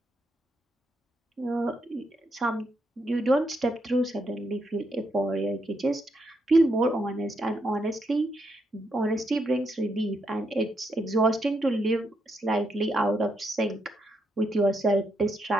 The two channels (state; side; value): normal; both; correlation 0.79